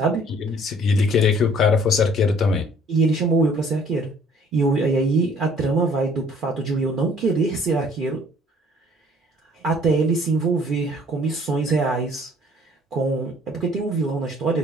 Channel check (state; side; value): normal; both; correlation 0.56